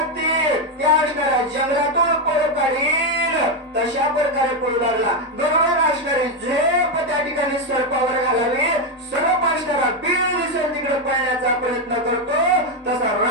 त्या असणाऱ्या जंगलातून पळ काढील तशा प्रकारे पळू लागला. गरुडाला असणारी झेप त्या ठिकाणी सर्पावर घालावी. सर्प असणारा बीळ दिसेल तिकडे पळण्याचा प्रयत्न करतो तसा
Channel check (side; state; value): both; normal; correlation 0.06